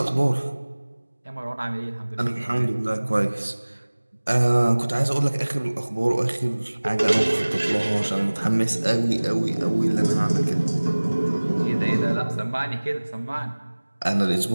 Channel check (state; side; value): inverted; both; correlation -1.00